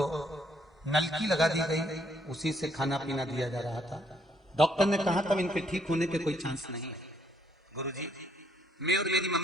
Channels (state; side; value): normal; both; correlation 0.69